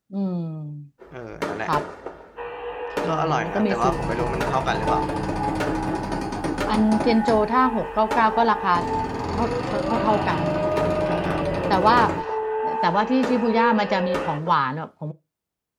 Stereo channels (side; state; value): both; identical; correlation 1.00